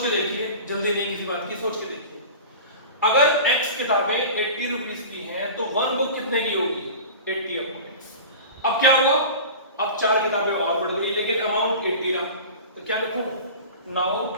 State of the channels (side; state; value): both; inverted; correlation -0.35